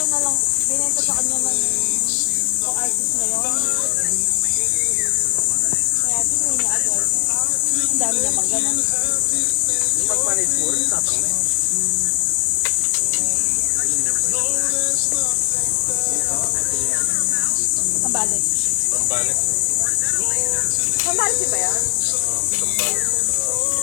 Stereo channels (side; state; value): right; silent; digital silence